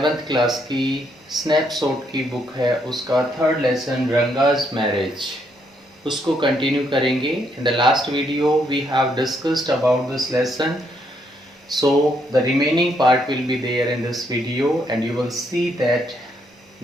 क्लास की स्नैपशॉट की बुक है उसका थर्ड लेसन रंगाज मैरिज उसको कंटिन्यू करेंगे। In the last video we have discussed about this lesson. So the remaining part will be there in this video and you will see that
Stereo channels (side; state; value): both; normal; correlation 0.74